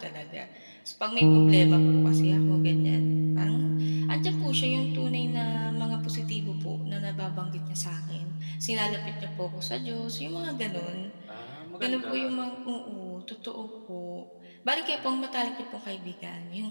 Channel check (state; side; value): inverted; both; correlation -1.00